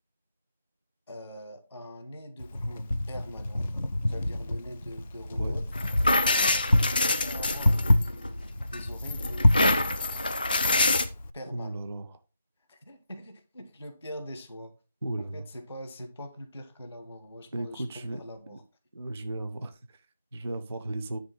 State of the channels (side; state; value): both; inverted; correlation -0.83